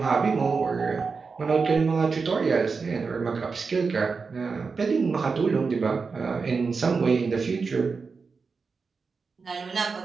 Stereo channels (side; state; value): left; quieter; 4.8 dB